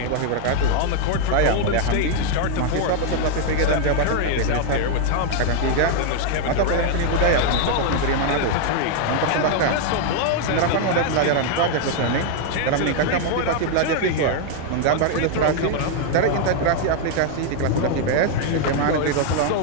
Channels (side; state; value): both; different; correlation 0.00